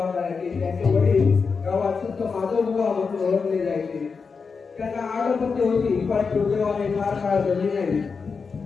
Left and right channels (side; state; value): right; quieter; 5.2 dB